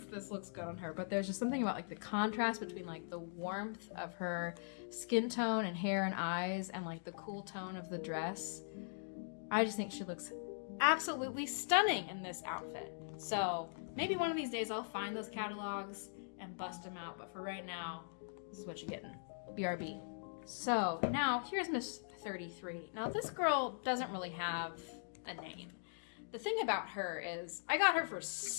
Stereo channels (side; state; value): right; silent; digital silence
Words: this looks good on her, but there's just something about like the contrast between like the warmth of her skin tone and hair and eyes and like the cool tone of the dress. I just think she looks absolutely stunning in this outfit. So maybe one of these days I'll find those catalogs and bust them out, but for right now, this is what you're getting. BRB. So now here's Miss 33. Now this girl doesn't really have a name. The thing about her is I got her for